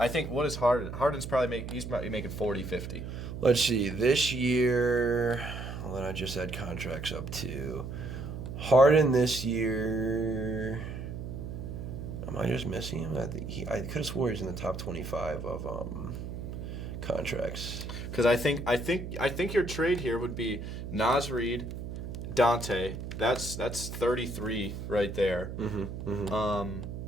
think what is Harden? Harden's probably making 40, 50. Let's see. This year, well, then I just had contracts up to Harden this year. Am I just missing him? I could have swore he's in the top 25 of contracts. Because I think your trade here would be Naz Reid, Dante. That's 33 right there.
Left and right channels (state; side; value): noise; right; hum, 7 dB below the sound